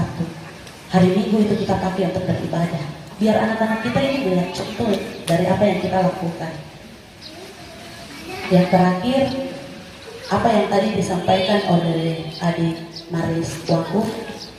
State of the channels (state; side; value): identical; both; correlation 1.00